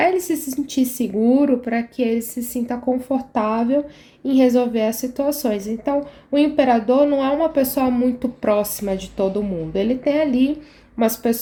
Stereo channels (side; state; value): both; identical; correlation 1.00